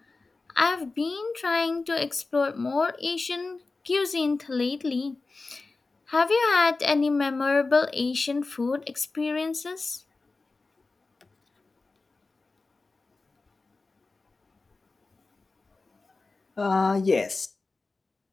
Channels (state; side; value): quieter; right; 3.7 dB